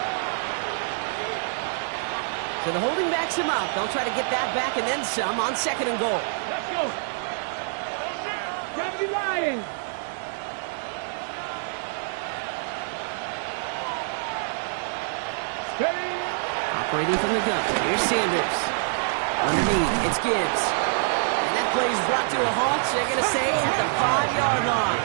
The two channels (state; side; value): silent; left; 61 dB below the other